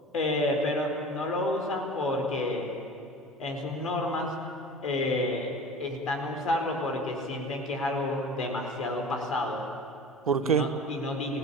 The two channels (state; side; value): normal; both; correlation 0.38